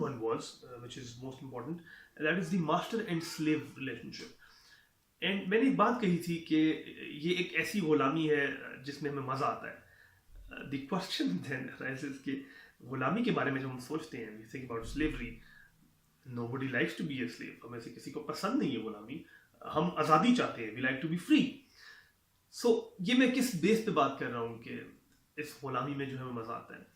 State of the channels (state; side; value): identical; both; correlation 1.00